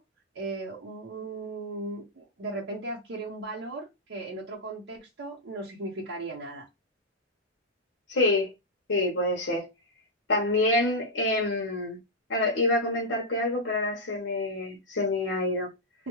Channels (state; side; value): normal; both; correlation -0.06